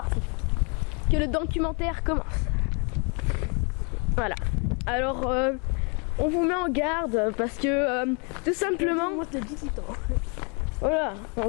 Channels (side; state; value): right; quieter; 34.9 dB